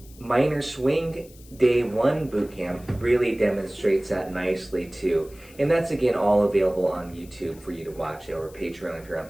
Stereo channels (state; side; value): noise; left; hiss, 24 dB below the sound